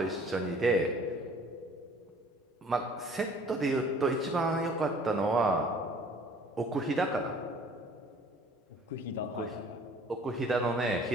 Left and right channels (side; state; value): both; normal; correlation 0.52